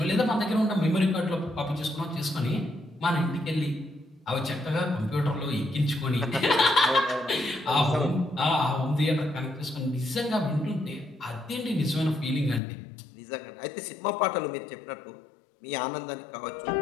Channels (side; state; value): right; drops out; at 12.6 s